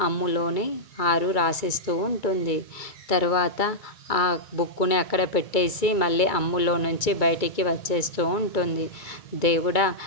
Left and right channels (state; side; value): late; right; 2.2 ms